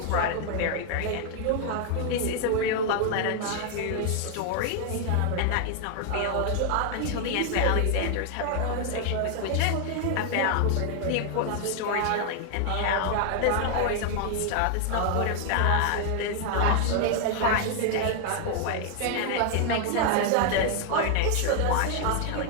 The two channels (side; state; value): both; different; correlation 0.00